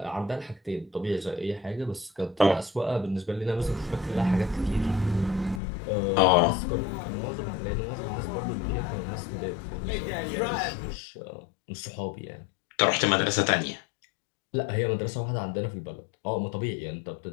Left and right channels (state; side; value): drops out; right; at 5.6 s